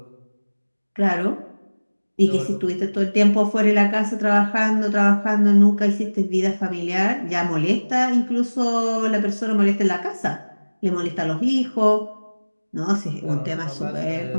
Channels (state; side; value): inverted; both; correlation -1.00